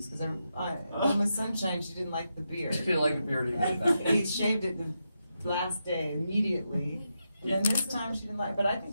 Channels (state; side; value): inverted; both; correlation -0.86